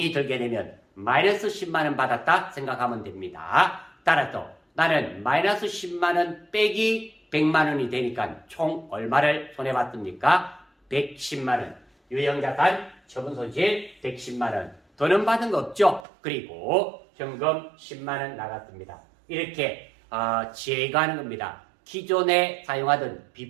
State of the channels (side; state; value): left; drops out; at 16.1 s